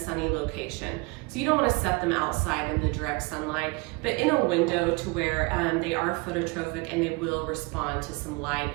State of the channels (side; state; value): left; quieter; 26.8 dB